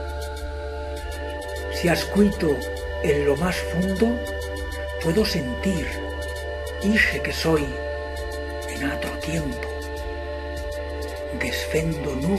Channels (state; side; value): noise; right; rumble, 21 dB below the sound